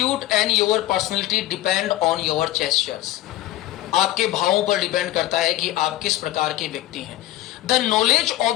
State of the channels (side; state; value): right; quieter; 15.5 dB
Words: and your personality depend on your gestures. आपके भावों पर डिपेंड करता है कि आप किस प्रकार के व्यक्ति हैं. The knowledge